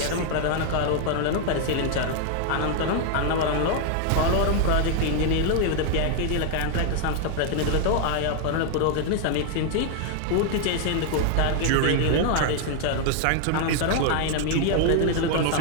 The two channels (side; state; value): both; different; correlation 0.00